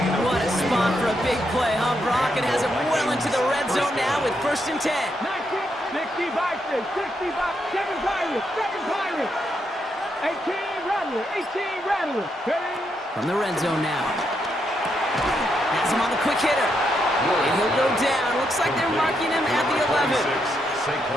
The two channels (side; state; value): both; normal; correlation 0.80